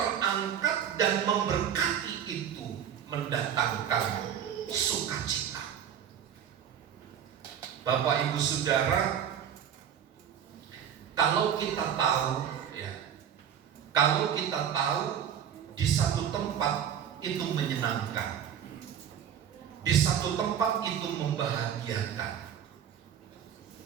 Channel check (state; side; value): quieter; left; 8.9 dB